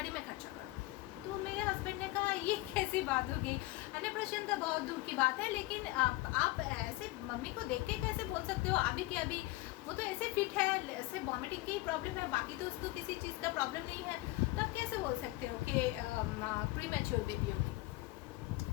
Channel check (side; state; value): right; quieter; 19.7 dB